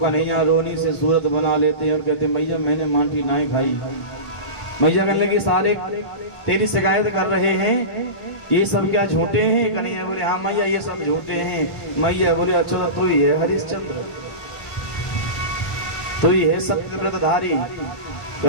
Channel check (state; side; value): late; right; 1.5 ms